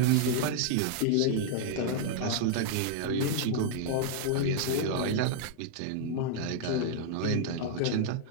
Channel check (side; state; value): both; different; correlation 0.00